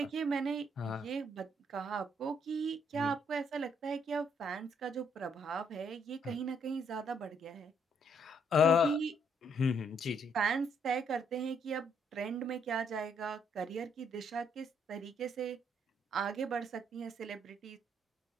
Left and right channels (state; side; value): normal; both; correlation 0.70